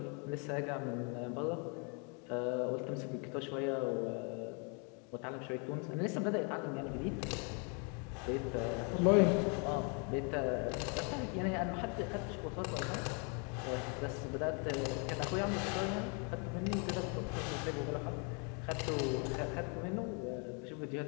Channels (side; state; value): right; quieter; 35.9 dB